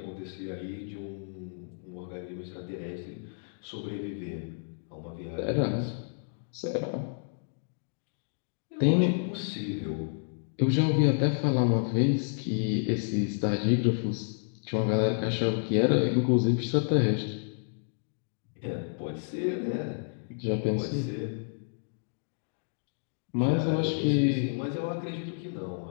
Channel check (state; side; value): silent; right; digital silence